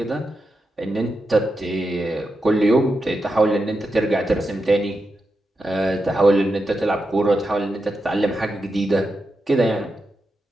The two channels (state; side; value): normal; both; correlation 0.88